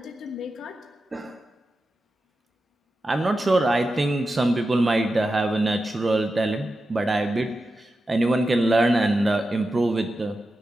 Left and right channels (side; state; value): both; normal; correlation 0.91